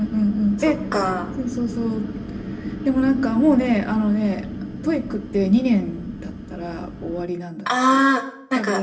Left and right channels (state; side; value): identical; both; correlation 1.00